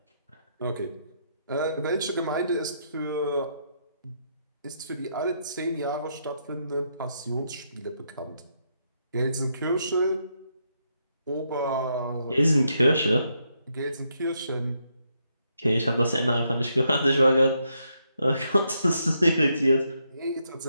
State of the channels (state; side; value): inverted; both; correlation -0.78